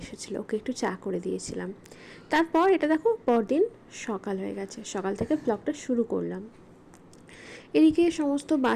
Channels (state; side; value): identical; both; correlation 1.00